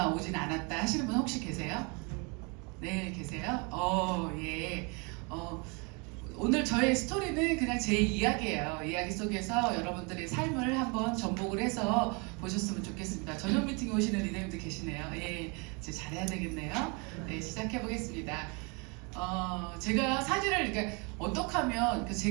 오진 않았다 하시는 분 혹시 계세요? 네, 계세요? 예. 오늘 저의 스토리는 그냥 제 이야기예요. 이야기 속에서 여러분들의 삶을 한번 접목을 해서 보셨으면 좋겠습니다. 저녁 미팅에 오시는 리더님들 계시네요. 예, 이제 잘해야 되겠네요. 네, 시작해 보겠습니다. 제가 사진을 그러니까 어떻게 하면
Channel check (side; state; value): left; quieter; 31.8 dB